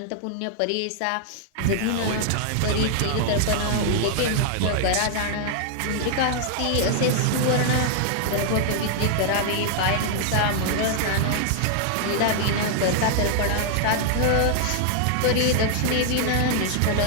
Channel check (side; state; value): both; different; correlation 0.00